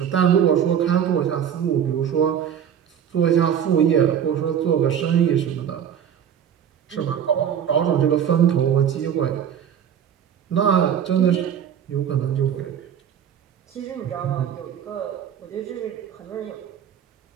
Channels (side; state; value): left; quieter; 8.8 dB